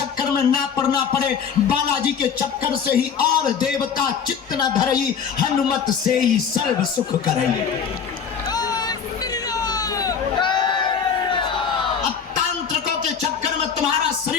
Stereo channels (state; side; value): quieter; right; 6.9 dB